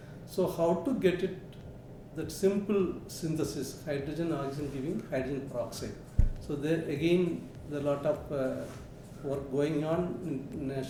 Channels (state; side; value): identical; both; correlation 1.00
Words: So how to get it, that simple synthesis, hydrogen, oxygen giving hydrogen peroxide. So there again, there are a lot of work going on